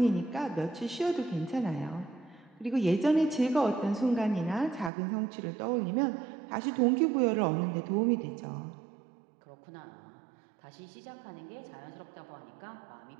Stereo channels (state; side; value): drops out; left; at 4.9 s